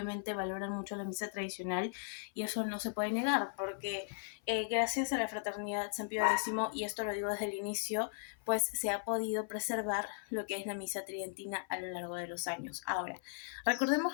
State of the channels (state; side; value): silent; right; 53 dB below the other